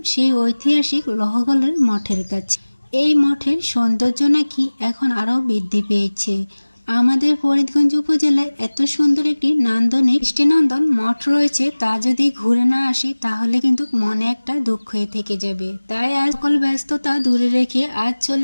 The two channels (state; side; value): inverted; both; correlation -1.00